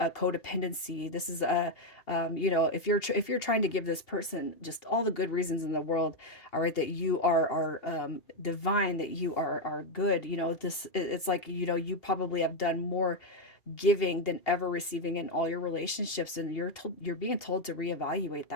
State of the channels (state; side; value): late; right; 2.8 ms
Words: This is if you're trying to give this person just all the good reasons in the world, all right, that you are divine, that you are good. It's like you probably have done more giving than ever receiving in all your relationships, and you're being told to reevaluate